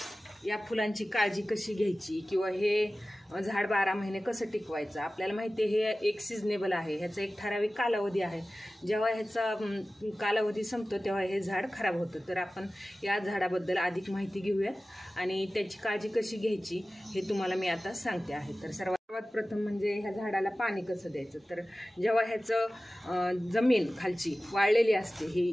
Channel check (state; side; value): normal; both; correlation 0.96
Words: या फुलांची काळजी कशी घ्यायची किंवा हे झाड 12 महिने कसं टिकवायचं. आपल्याला माहिती आहे हे एक सिजनेबल आहे, ह्याचा एक ठराविक कालावधी आहे. जेव्हा ह्याचा कालावधी संपतो तेव्हा हे झाड खराब होतं. तर आपण या झाडाबद्दल अधिक माहिती घेऊयात आणि त्याची काळजी कशी घ्यायची हे तुम्हाला मी आता सांगते आहे. तर सर्वात प्रथम म्हणजे ह्या झाडाला पाणी कसं द्यायचं. तर जेव्हा ह्याचं जमीन खालची वाळलेली असते, ही